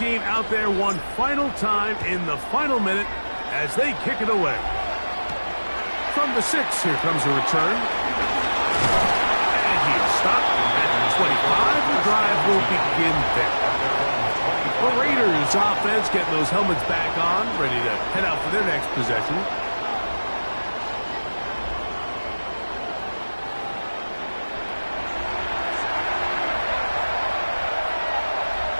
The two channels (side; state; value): both; inverted; correlation -1.00